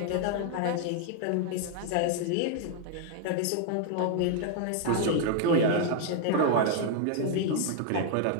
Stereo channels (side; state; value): both; different; correlation 0.00